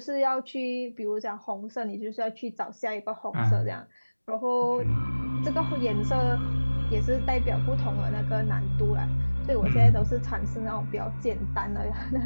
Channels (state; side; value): inverted; both; correlation -1.00